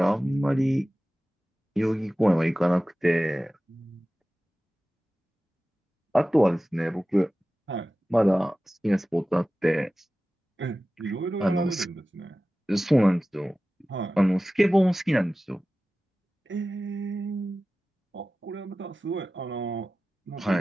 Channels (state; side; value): normal; both; correlation 0.96